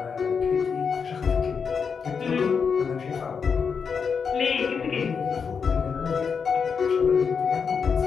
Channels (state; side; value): quieter; right; 6.0 dB